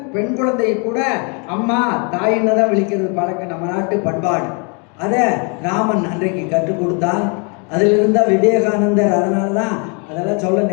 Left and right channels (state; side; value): quieter; right; 35.4 dB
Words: பெண் குழந்தையை கூட அம்மா தாயின்னு தான் விழிக்கிறது பழக்கம், நம்ம நாட்டு பண்பாடு. அதை ராமன் அன்றைக்கு கற்றுக் கொடுத்தான். அதில் இருந்தால் விவேகானந்தர், அதனால தான் அதெல்லாம் சொல்ல